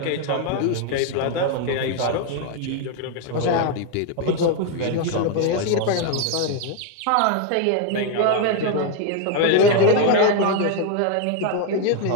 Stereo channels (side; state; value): both; different; correlation 0.01